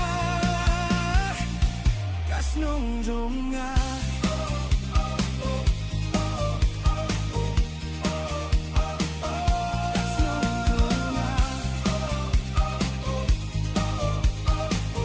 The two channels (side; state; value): both; identical; correlation 1.00